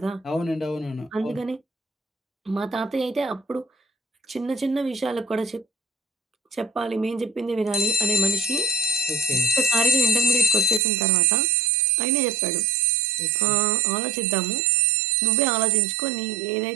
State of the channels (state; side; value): drops out; left; at 10.8 s